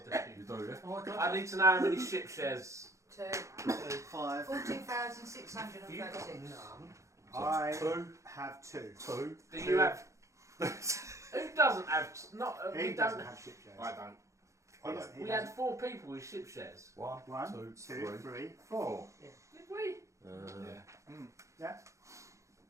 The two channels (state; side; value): late; left; 0.15 ms